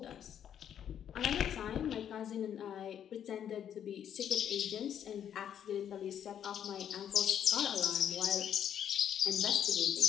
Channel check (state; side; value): quieter; right; 9.4 dB